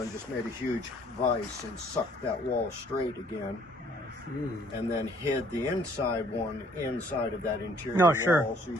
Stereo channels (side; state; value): both; normal; correlation 0.60